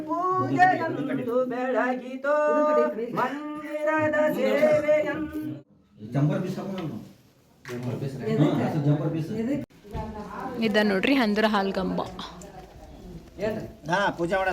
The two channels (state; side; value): identical; both; correlation 1.00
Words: ಪೂಜೆಯಂದು ಬೆಳಗಿತು ಮಂದಿರದ ಸೇವೆಯಂದು ಇದ ನೋಡ್ರಿ ಹಂದ್ರ ಹಾಲ್ಗಂಬ. ಪೂಜೆ